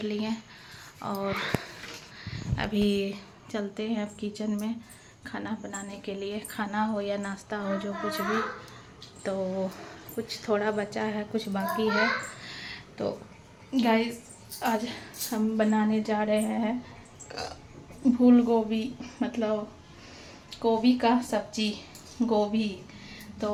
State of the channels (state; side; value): identical; both; correlation 1.00